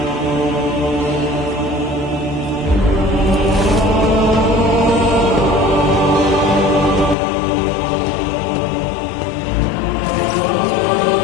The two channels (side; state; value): right; drops out; at 7.2 s